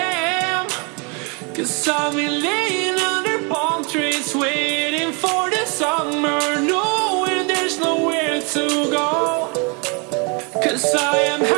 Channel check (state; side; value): quieter; left; 33.2 dB